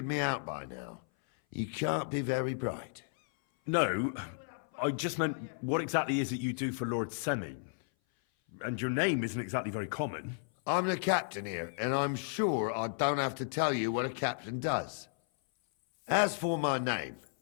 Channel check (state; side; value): silent; right; 55 dB below the other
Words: me out by now, you can't be very bright. No, I just meant, what exactly is it you do for Lord Semin? And your name isn't exactly very common. I'm the captain here, and I'm sure I don't have to tell you what a captain does. As for my name,